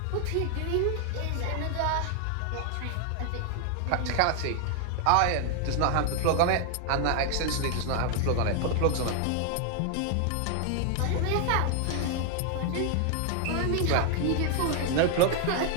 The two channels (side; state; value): both; different; correlation 0.00